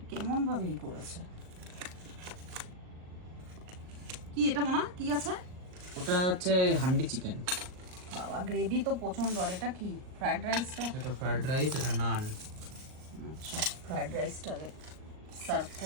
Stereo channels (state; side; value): late; left; 38 ms